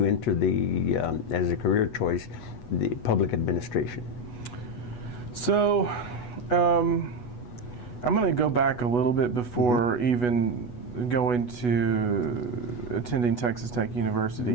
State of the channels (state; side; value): late; right; 8.2 ms